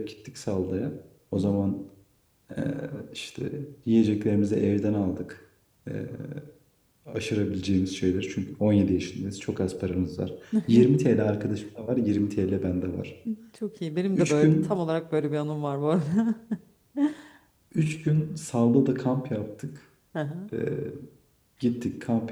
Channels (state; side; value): identical; both; correlation 1.00